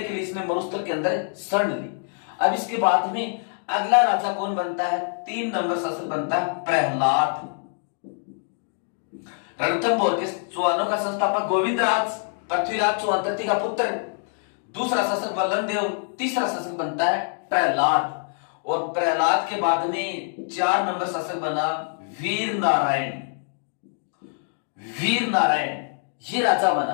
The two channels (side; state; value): right; silent; 62 dB below the other